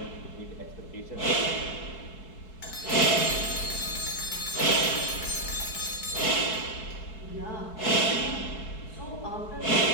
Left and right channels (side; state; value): right; late; 4.6 ms